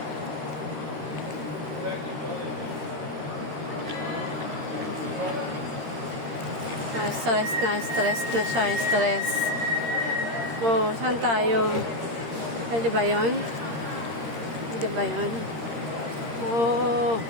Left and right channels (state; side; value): late; left; 13 ms